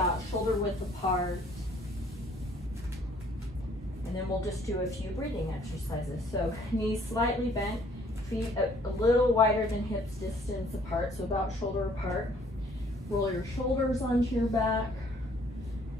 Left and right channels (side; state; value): both; normal; correlation 0.60